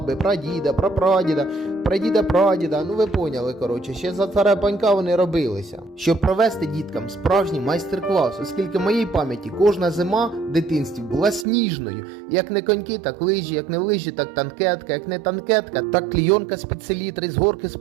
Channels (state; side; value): drops out; left; at 11.5 s